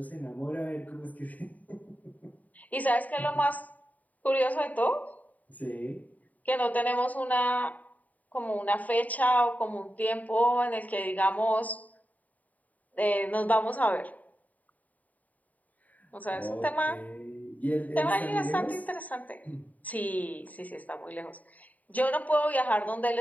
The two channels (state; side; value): late; right; 0.074 ms